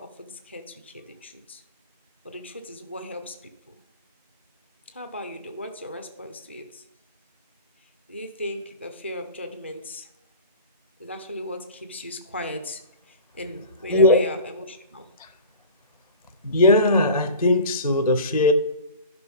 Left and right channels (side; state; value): both; inverted; correlation -0.38